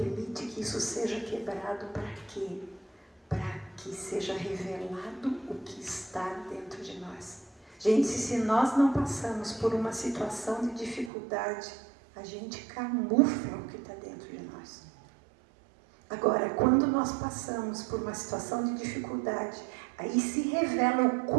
que isso seja quebrado para quê? Para que seja revelado o que está dentro de nós. Gente, se nós não passamos por uma situação de dificuldade, a gente camufla o que está dentro de nós. Agora, quando nós passamos por uma situação de dificuldade, aí se revela o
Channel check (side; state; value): left; drops out; at 11.1 s